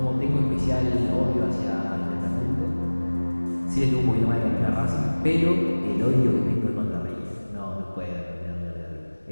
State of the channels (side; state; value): both; inverted; correlation -1.00